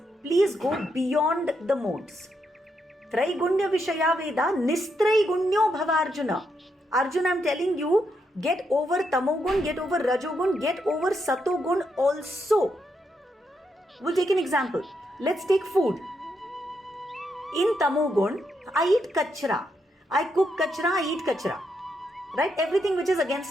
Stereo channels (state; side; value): normal; both; correlation 0.80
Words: please go beyond the modes. Traigunya Vishaya Veda, Nistraigunya Bhavarjuna. Arjuna, I'm telling you, get over Tamogun, get over Rajogun, get over Satogun also. We'll take an example. Let's take food. In Tamogun, I eat kachra. I cook kachra, I eat kachra. Right? Everything which is